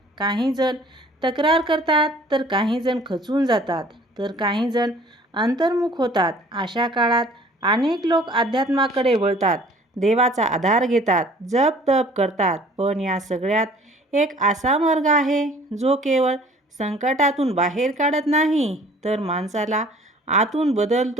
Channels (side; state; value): both; normal; correlation 0.52